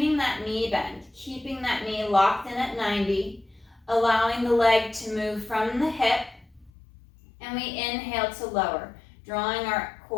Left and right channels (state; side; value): drops out; right; at 6.7 s